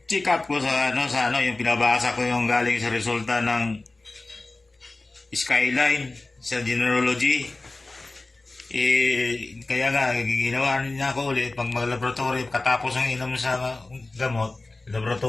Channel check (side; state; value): right; quieter; 3.2 dB